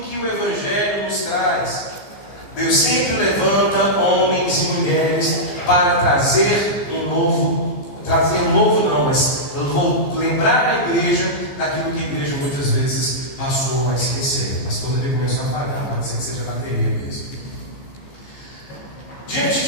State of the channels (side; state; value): right; late; 15 ms